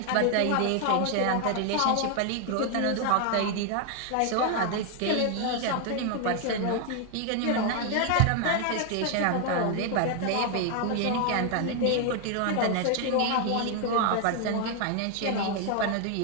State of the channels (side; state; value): both; different; correlation 0.00